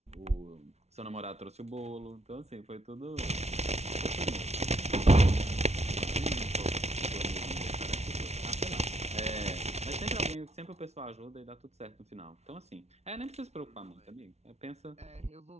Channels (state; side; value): late; left; 0.31 ms